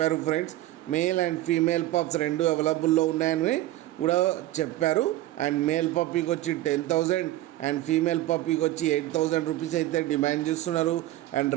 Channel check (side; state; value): left; quieter; 15.3 dB